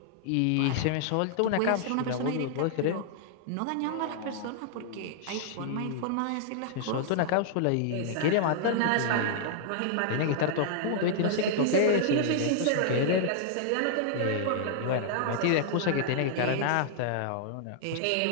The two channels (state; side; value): different; both; correlation -0.01